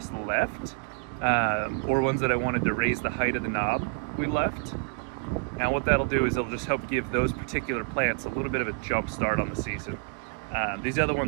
left. Or ones that I wanted to raise the height of the knob, we left. And what that'll do is it'll just help give those particular plants a little bit of a jump start on the season. These other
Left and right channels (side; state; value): left; quieter; 39.0 dB